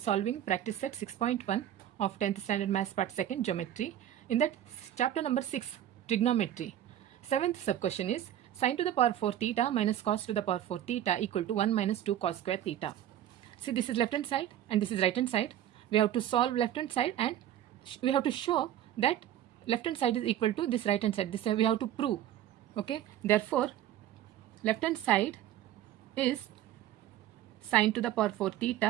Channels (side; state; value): left; quieter; 11.6 dB